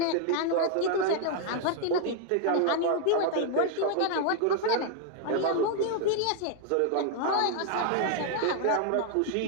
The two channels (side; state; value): both; different; correlation 0.00